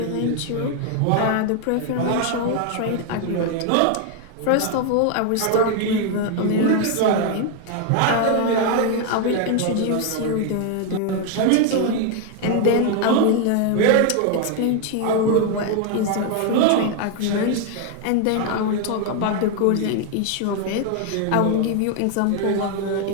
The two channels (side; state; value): both; different; correlation 0.00